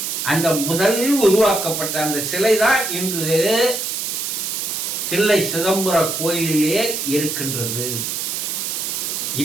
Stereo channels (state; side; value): noise; right; hiss, 2 dB below the sound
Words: அந்த முதல் உருவாக்கப்பட்ட அந்த சிலை தான் இன்று தில்லை சிதம்பர கோயிலிலே இருக்கின்றது.